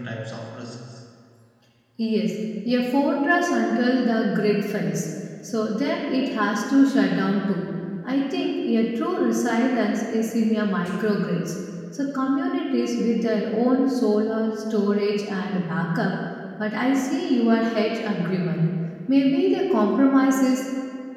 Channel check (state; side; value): identical; both; correlation 1.00